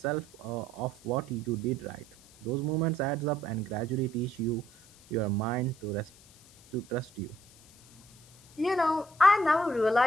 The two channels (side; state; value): left; noise; hiss, 25 dB below the sound